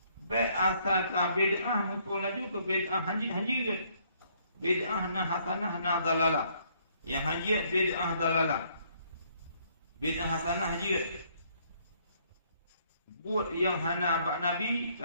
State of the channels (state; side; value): inverted; both; correlation -0.66